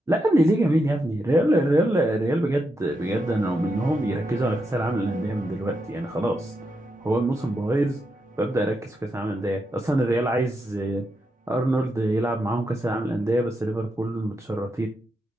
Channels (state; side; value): normal; both; correlation 0.84